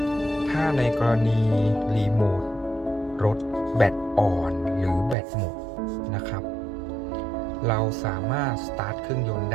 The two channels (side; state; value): left; drops out; at 5.2 s